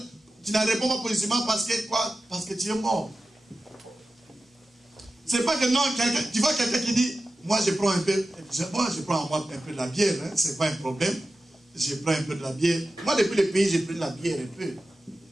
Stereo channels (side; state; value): both; normal; correlation 0.94